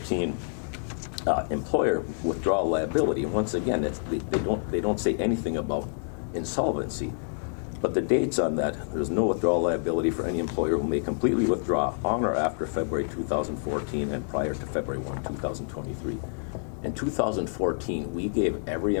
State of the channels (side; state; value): right; silent; digital silence